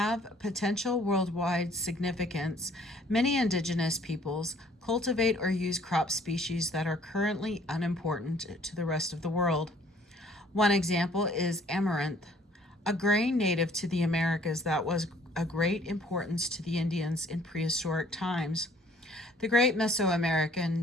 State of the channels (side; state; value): both; normal; correlation 0.58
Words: potential worldwide significance, many indigenous peoples cultivate or use crop species that are currently unimportant to the rest of the world. One example is amaranth, a grain native to the Americas that was of great importance to the Indians in prehistoric times. The great